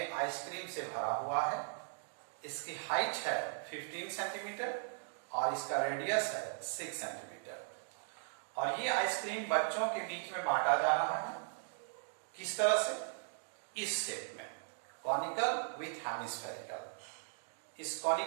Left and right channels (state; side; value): silent; left; digital silence